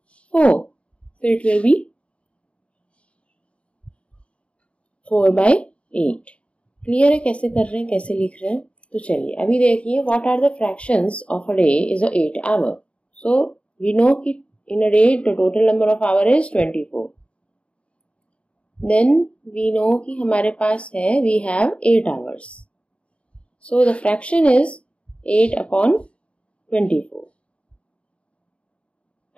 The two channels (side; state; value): right; late; 0.061 ms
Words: 4. So it will be 4 by 8. Clear है कैसे कर रहे हैं, कैसे लिख रहे हैं? तो चलिए अभी देखिए, what are the fractions of a day is a 8 hour. So we know कि in a day the total number of hour is 24. Then we know कि हमारे पास है, we have 8 hours. So the fraction is 8 upon 24.